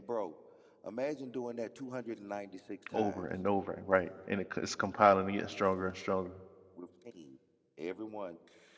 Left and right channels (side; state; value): both; identical; correlation 1.00